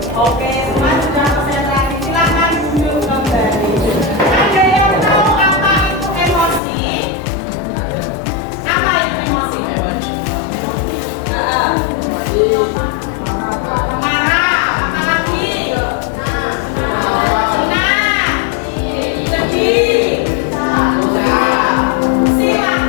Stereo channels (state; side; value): drops out; right; at 6.6 s